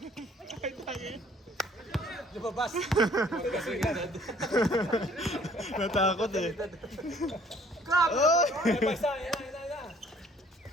Ay, tangin. Lumabas. Natakot eh. Grab! Oh! Ay, basta, yan na.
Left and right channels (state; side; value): normal; both; correlation 0.58